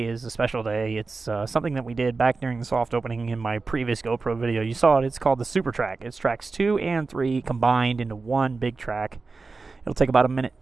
is a special day. It's something that we did back during the soft opening in my previous GoPro video. You saw it. It's called the SuperTrack. It's tracks 2 and 3 combined into one big track. It'll take about a minute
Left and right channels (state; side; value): quieter; left; 4.1 dB